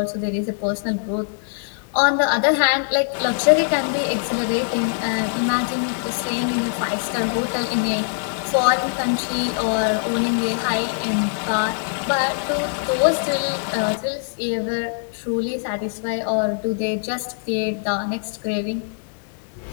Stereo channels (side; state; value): right; silent; digital silence